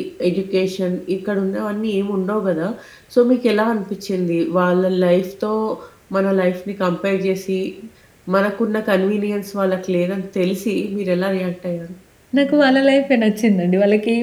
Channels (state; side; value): identical; both; correlation 1.00